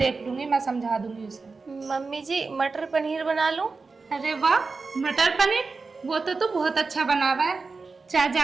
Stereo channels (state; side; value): quieter; left; 4.2 dB